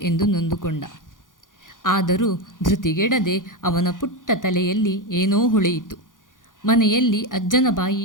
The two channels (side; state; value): right; late; 0.89 ms